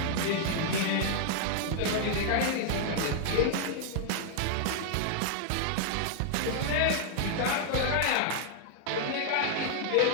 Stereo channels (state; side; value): different; both; correlation 0.00